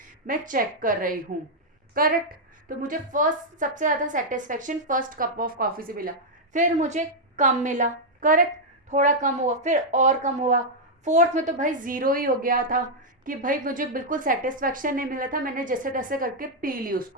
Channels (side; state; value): both; normal; correlation -0.03